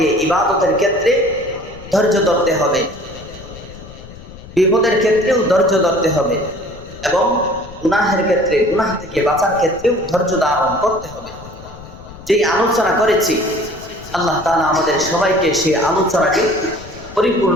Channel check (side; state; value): left; noise; rumble, 17 dB below the sound